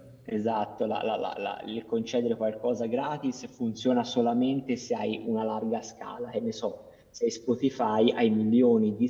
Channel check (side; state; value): both; identical; correlation 1.00